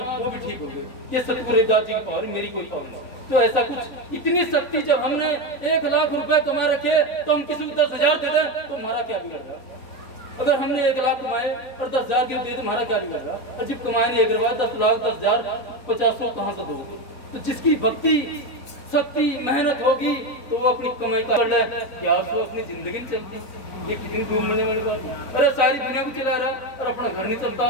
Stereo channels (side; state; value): right; late; 4.0 ms